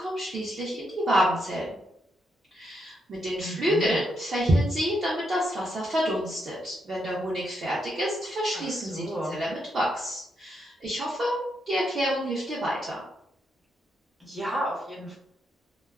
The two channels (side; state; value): both; normal; correlation 0.80